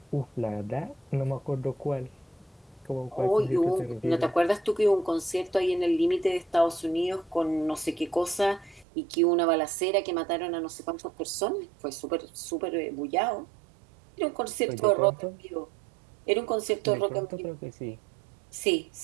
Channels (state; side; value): drops out; left; at 8.8 s